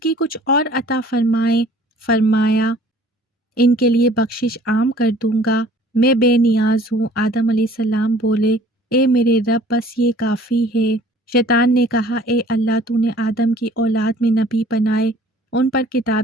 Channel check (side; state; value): both; normal; correlation 0.52